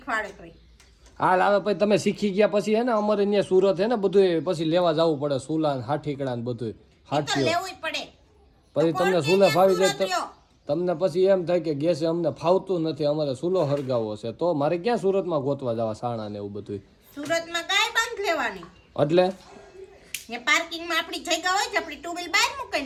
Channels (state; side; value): identical; both; correlation 1.00